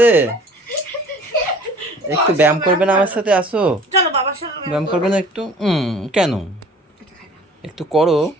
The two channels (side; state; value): both; normal; correlation 0.49